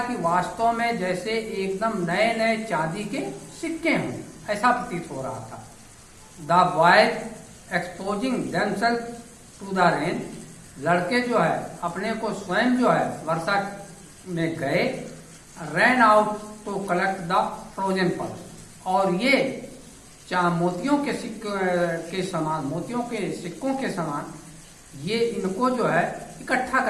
कि वास्तव में जैसे एकदम नए नए चांदी के सिक्के हों, ऐसा प्रतीत हो रहा था। The boys exposing themselves to the rain, लड़के जो है अपने को स्वयं जो है वर्षा में गए। Ran out to collect the frozen pearls, और ये मोतियों के के समान, मोतियों के सिक्कों के समान ये इनको जो है इकट्ठा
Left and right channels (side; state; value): both; identical; correlation 1.00